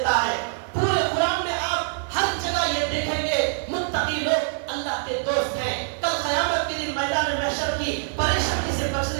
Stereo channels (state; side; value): silent; left; 62 dB below the other